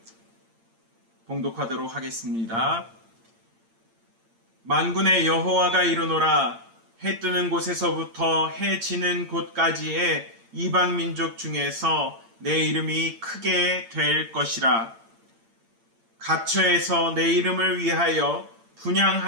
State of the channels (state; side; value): late; left; 8.8 ms